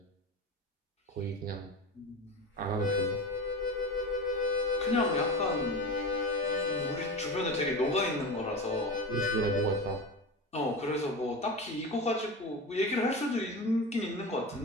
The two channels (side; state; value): both; normal; correlation 0.26